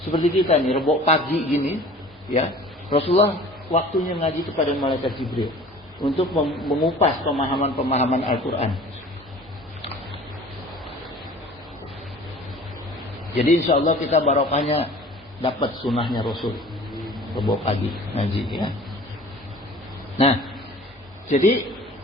Seperti kita nih, Rebo pagi gini, ya. Rasulullah waktunya ngaji kepada malaikat Jibril untuk mengupas pemahaman-pemahaman Al-Qur'an. Jadi insya Allah kita barokahnya dapat sunnahnya Rasul. Rebo pagi ngaji, ya. Nah, jadi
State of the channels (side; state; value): both; normal; correlation 0.45